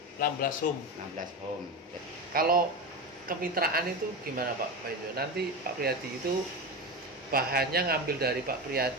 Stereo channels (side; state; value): both; normal; correlation 0.21